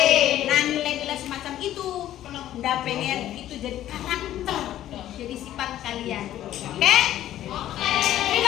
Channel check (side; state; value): right; quieter; 12.7 dB